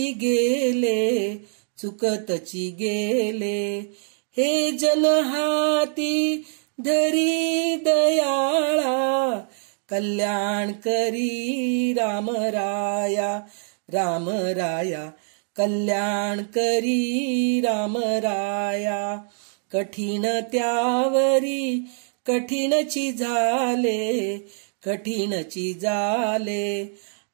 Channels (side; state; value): left; silent; 63 dB below the other